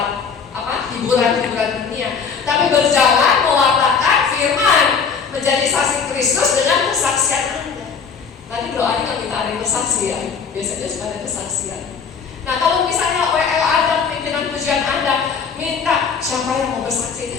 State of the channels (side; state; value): right; quieter; 6.1 dB